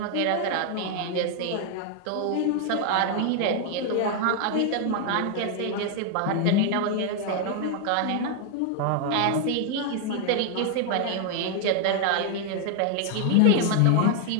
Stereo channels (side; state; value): both; different; correlation 0.00